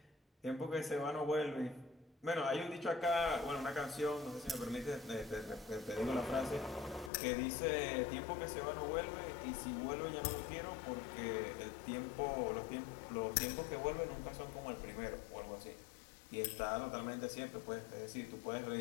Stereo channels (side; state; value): right; drops out; at 7.1 s